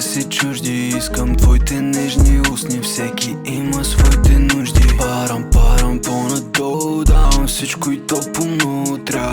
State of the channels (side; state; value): both; identical; correlation 1.00